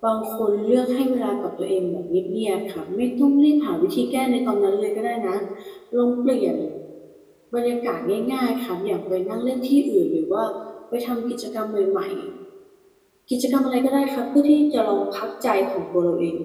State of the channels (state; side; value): identical; both; correlation 1.00